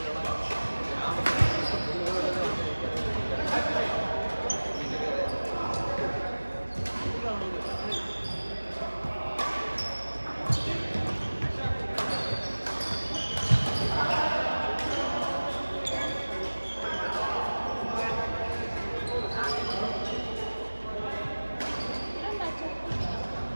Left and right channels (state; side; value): inverted; both; correlation -1.00